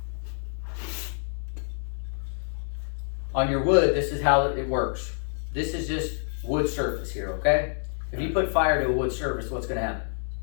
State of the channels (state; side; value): silent; right; digital silence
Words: on your wood, this is how it works. This is just wood surface here, okay? If you put fire to a wood surface, what's gonna happen?